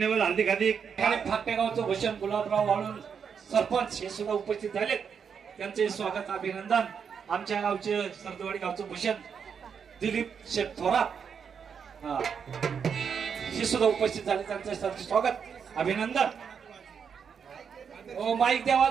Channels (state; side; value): quieter; left; 6.8 dB